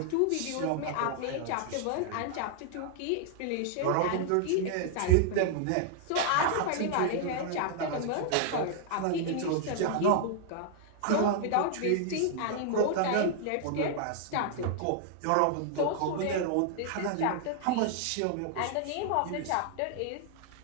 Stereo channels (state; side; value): different; both; correlation 0.00